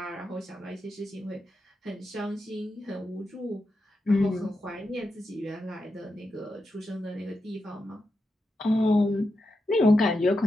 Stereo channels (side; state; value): both; normal; correlation 0.87